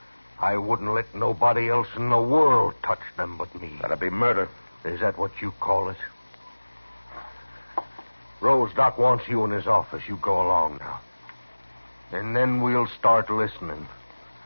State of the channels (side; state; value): both; inverted; correlation -1.00